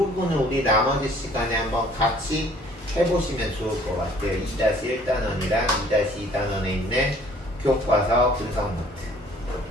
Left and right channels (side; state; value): both; normal; correlation 0.56